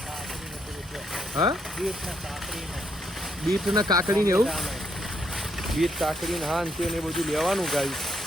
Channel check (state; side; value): normal; both; correlation 0.75